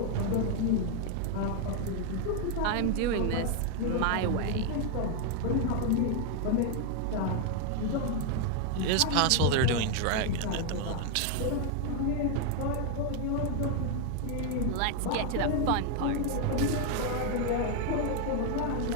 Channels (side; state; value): both; different; correlation 0.01